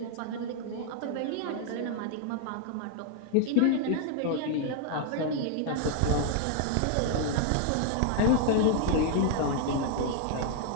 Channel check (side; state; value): both; different; correlation 0.00